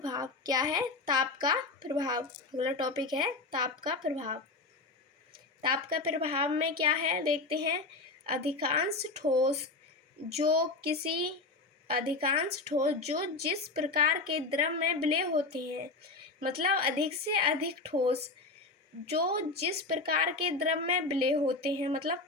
क्या है, ताप का प्रभाव। अगला टॉपिक है ताप का प्रभाव। ताप का प्रभाव में क्या है देखते हैं। अधिकांश ठोस जो जिस प्रकार के द्रव में विलेय होते हैं, मतलब अधिक से अधिक ठोस जो जिस प्रकार के द्रव में विलेय होते हैं, मतलब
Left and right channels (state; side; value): quieter; right; 3.5 dB